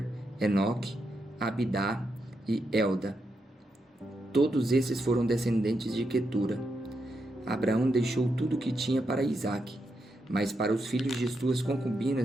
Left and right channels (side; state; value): both; normal; correlation 0.83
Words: Enoque, Abidá e Elda. Todos esses foram descendentes de Quetura. Abraão deixou tudo o que tinha para Isaque, mas para os filhos de suas